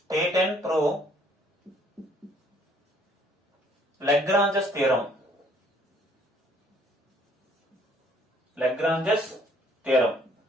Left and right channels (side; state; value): both; normal; correlation 0.61